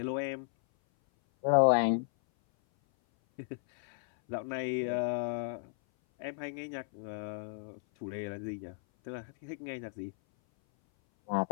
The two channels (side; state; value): right; silent; 55 dB below the other